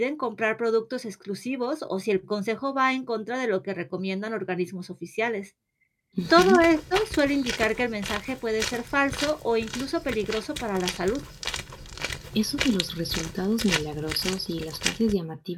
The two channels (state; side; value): identical; both; correlation 1.00